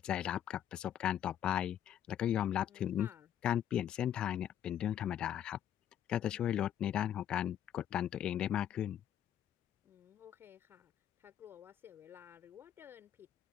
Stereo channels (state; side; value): quieter; right; 10.5 dB